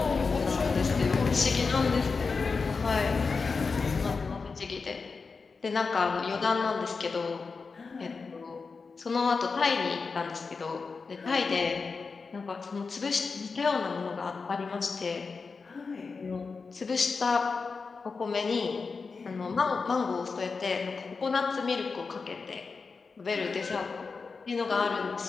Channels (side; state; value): right; quieter; 4.7 dB